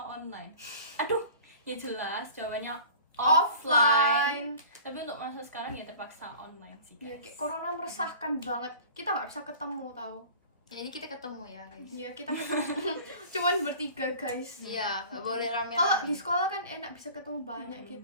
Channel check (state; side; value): inverted; both; correlation -0.43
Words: Aduh, ya jelas jawabannya offline. Tapi untuk masa sekarang ya terpaksa online sih. Ya, guys. kayak corona meresahkan banget. Kita nggak bisa ketemu tau. Ya ini kita ketemu ya guys. Ya kita ketemu cuman bertiga guys. Iya, nggak boleh rame. Kalau di sekolah kan enak bisa ketemu banyak